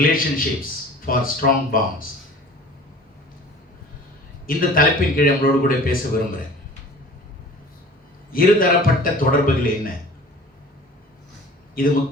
for strong bonds. இந்த தலைப்பின் கீழ் நம்மளோடு கூட பேச விரும்புகிறேன். இருதரப்பட்ட தொடர்புகள் என்ன? இது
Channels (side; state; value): both; normal; correlation 0.44